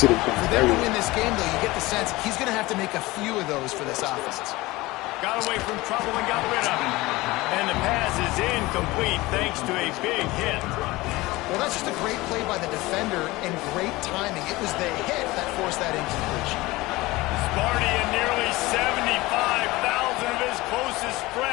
them to win this game, though, you get the sense he's going to have to make a few of those for this offense. Got away from trouble and got rid of it. And the pass is incomplete thanks to a big hit. Well, that's just a great play by the defender and great timing. It was the hit that forced that incompletion. Sparty and nearly 75,000 of his closest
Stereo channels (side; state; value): right; quieter; 20.4 dB